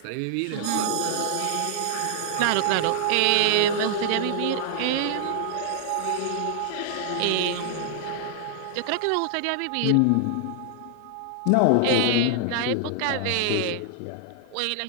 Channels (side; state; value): both; different; correlation -0.01